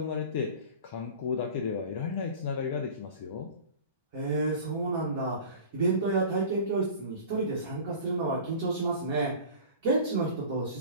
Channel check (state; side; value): inverted; both; correlation -0.38